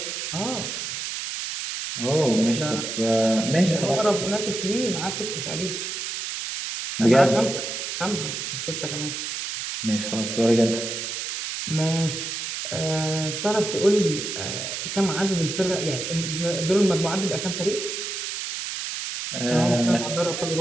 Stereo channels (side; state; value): right; noise; hiss, 5 dB below the sound